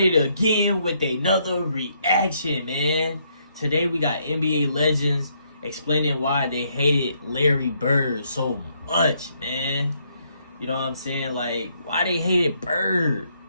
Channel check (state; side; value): inverted; both; correlation -0.72